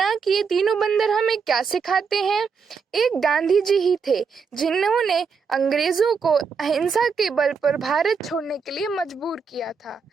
कि ये तीनों बंदर हमें क्या सिखाते हैं। एक गांधी जी ही थे जिन्होंने अंग्रेजों को अहिंसा के बल पर भारत छोड़ने के लिए मजबूर किया था।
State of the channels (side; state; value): left; quieter; 5.6 dB